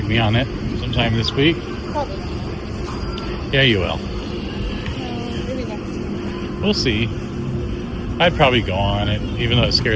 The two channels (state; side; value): identical; both; correlation 1.00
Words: me on it sometime this week. Probably. Yeah, you will. Maybe next time. We'll see. I'd probably go on it, even though it